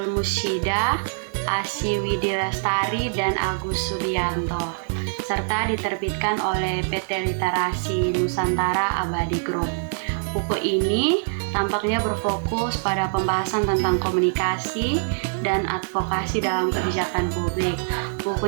Musyida, Asy Widilestari, dan Agus Subianto, serta diterbitkan oleh PT Literasi Nusantara Abadi Group. Buku ini tampaknya berfokus pada pembahasan tentang komunikasi dan advokasi dalam kebijakan publik.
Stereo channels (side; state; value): left; silent; digital silence